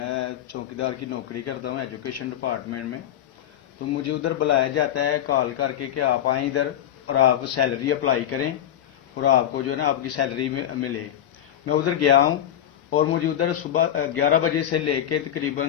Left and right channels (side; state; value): right; quieter; 10.7 dB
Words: چوکیدار کی نوکری کرتا ہوں ایجوکیشن ڈپارٹمنٹ میں. تو مجھے ادھر بلایا جاتا ہے کال کر کے کہ آپ آئیں ادھر اور آپ سیلری اپلائی کریں اور آپ کو جو ہے نا آپ کی سیلری ملے. میں ادھر گیا ہوں اور مجھے ادھر صبح 11 بجے سے لے کے